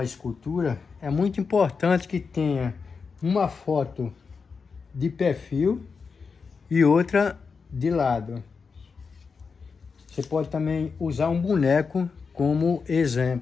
escultura, é muito importante que tenha uma foto de perfil e outra de lado. Você pode também usar um boneco como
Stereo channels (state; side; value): quieter; right; 5.2 dB